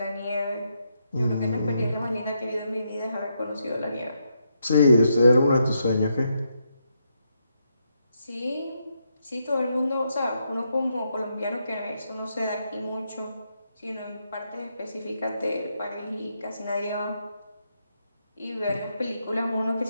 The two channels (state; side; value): inverted; both; correlation -0.80